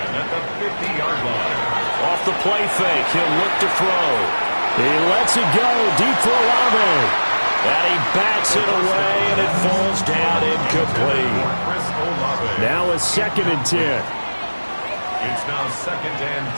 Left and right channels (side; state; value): both; inverted; correlation -1.00